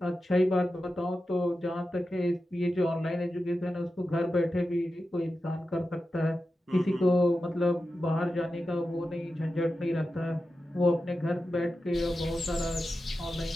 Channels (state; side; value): normal; both; correlation 0.91